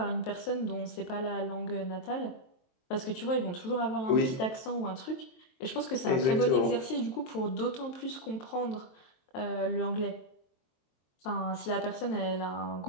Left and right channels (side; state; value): right; late; 23 ms